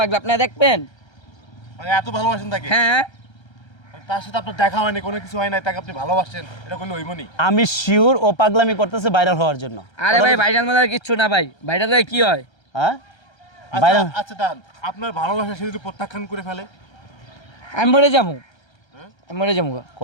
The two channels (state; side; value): late; right; 1.3 ms